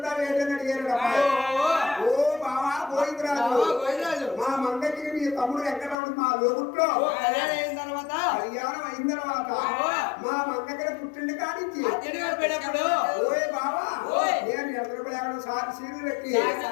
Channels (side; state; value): right; drops out; at 6.0 s